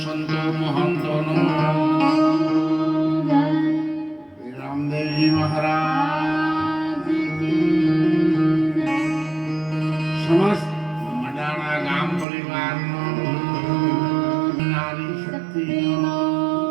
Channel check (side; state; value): left; drops out; at 12.2 s